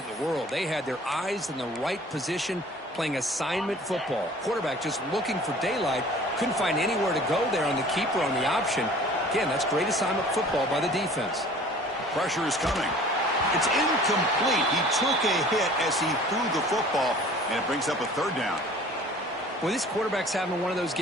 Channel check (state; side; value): normal; both; correlation 0.48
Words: in the world. They had their eyes in the right position playing assignment football. Quarterback just looking for daylight. Couldn't find anywhere to go there on the keeper on the option. Again, that's great assignment football by the defense. Pressure is coming. It's incomplete. He took a hit as he threw the football, and it brings up a third down. Well, this quarterback's having one of those